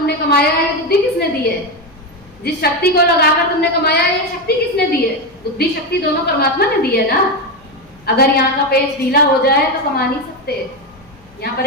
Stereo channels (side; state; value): left; noise; hum, 29 dB below the sound